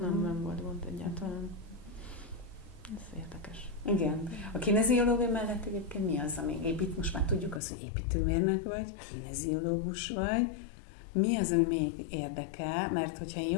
Nem volt gond egyáltalán. Ez érdekes. Igen. A kineziológia mellett egyébként mi az, ami most már tudjuk azt, hogy építőmérnök vagy, kineziológus vagy. Mi az, ami még érdekel? Mert hogyha én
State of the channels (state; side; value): drops out; right; at 7.6 s